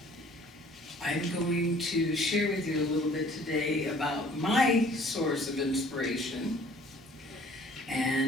I'm going to share with you a little bit today about my source of inspiration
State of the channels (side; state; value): both; normal; correlation 0.54